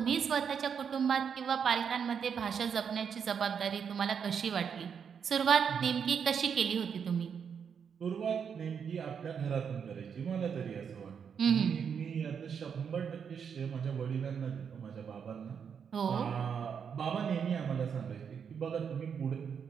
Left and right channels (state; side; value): quieter; left; 7.1 dB